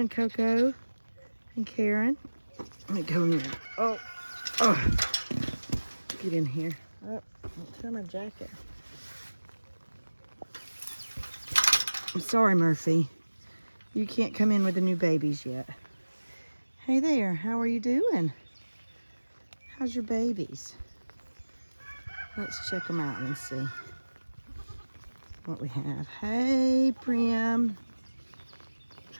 Coco and Karen? Let me go in. Oh, get in here. Oh, don't tear my jacket. I'm sorry, Murphy. You can't come in with the new babies yet. Hey there, how are you doing? How's your babies? Let's check them out and see what we have. Hey, Prim.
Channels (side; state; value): both; inverted; correlation -1.00